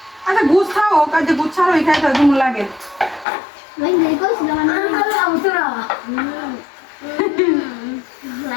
আচ্ছা গুছ খাও কাজে গুছ ছাড়ো এই খাইতে তুমি লাগে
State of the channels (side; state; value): right; drops out; at 3.2 s